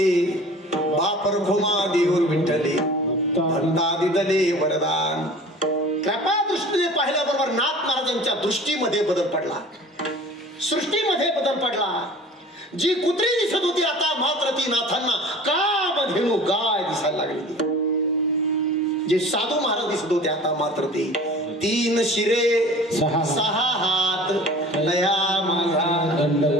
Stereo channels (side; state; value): both; normal; correlation 0.43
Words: बापर घुमा देऊर विठ्ठले, भक्ता दिदले वरदान. कृपा दृष्टीने पाहिल्याबरोबर नाथ महाराजांच्या दृष्टीमध्ये बदल पडला, सृष्टीमध्ये बदल पडला. जी कुत्री दिसत होती आता मात्र ती नाथांना का धेनू गाय दिसायला लागली. जे साधू महाराज दिसत होते आता मात्र ते तीन शिरे सहा हात दया माझा